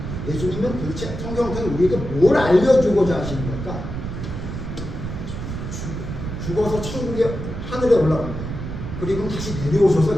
예수님은 도대체 성경을 통해 우리에게 뭘 알려주고자 하시는 걸까? 죽어서 천국에 하늘에 올라갑니다. 그리고 다시 내려오셔서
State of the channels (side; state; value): right; noise; rumble, 6 dB below the sound